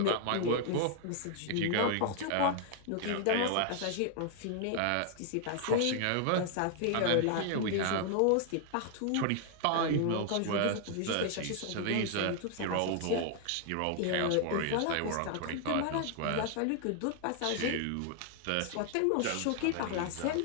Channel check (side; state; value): both; different; correlation 0.00